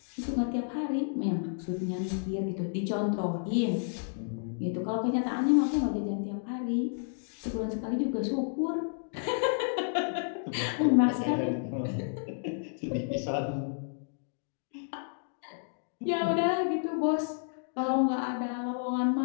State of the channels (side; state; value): right; silent; digital silence